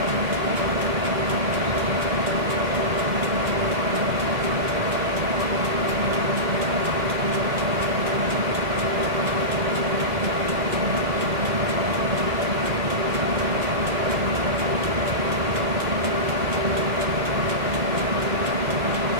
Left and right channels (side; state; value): left; late; 1.9 ms